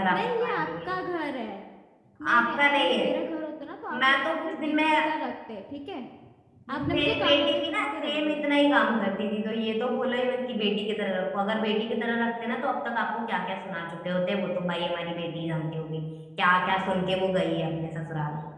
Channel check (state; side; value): identical; both; correlation 1.00